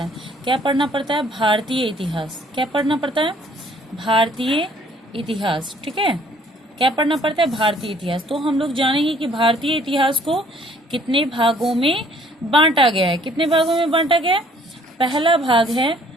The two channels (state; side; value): normal; both; correlation 0.59